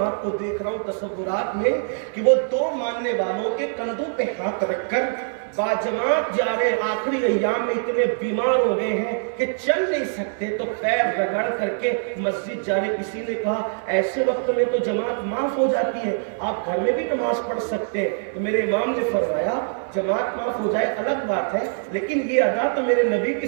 ہاتھ کو دیکھ رہا ہوں تصورات میں کہ وہ دو ماننے والوں کے کندھوں پہ ہاتھ رکھ کر باجماعت جا رہے، آخری ایام میں اتنے بیمار ہو گئے ہیں کہ چل نہیں سکتے تو پیر رگڑ کر کے مسجد جا رہے۔ کسی نے کہا ایسے وقت میں تو جماعت معاف ہو جاتی ہے، آپ گھر میں بھی نماز پڑھ سکتے ہیں، تو میرے امام نے فرمایا جماعت معاف ہو جائے الگ بات ہے، لیکن یہ ادا تو میرے نبی کی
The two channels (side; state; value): left; silent; digital silence